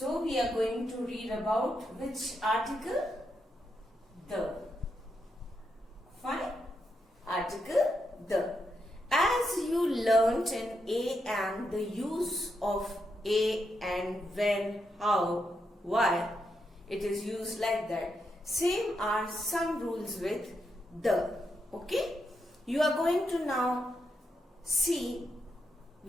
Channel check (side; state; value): both; normal; correlation 0.83